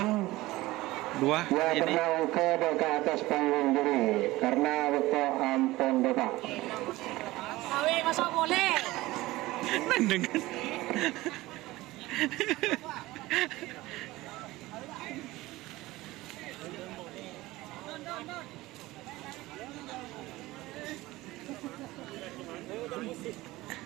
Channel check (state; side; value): quieter; left; 18.7 dB